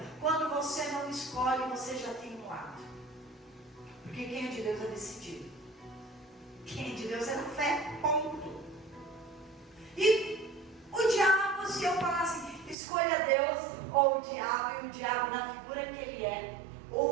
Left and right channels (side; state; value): left; drops out; at 12.8 s